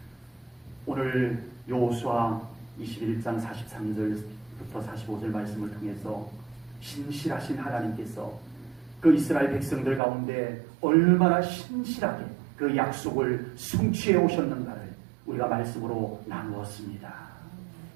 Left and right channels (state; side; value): drops out; left; at 10.0 s